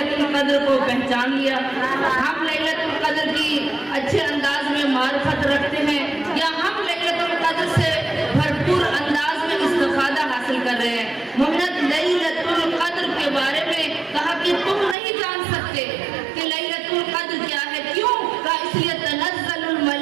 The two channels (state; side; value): drops out; left; at 15.0 s